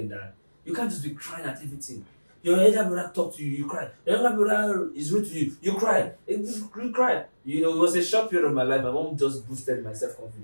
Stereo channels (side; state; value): both; inverted; correlation -1.00